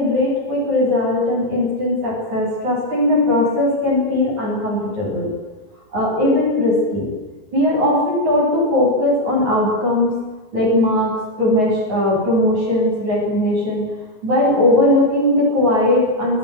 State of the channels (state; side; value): late; left; 19 ms